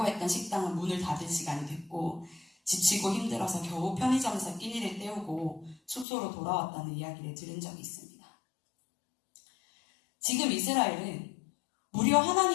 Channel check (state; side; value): drops out; right; at 6.1 s